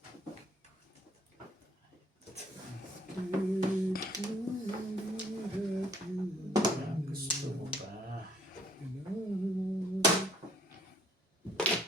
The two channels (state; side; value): normal; both; correlation 0.61